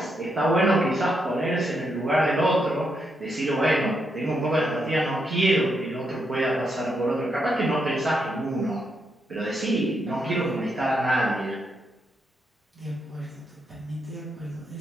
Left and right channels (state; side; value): normal; both; correlation 0.80